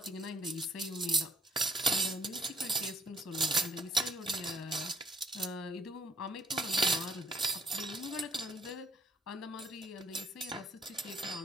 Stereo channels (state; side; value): normal; both; correlation 0.61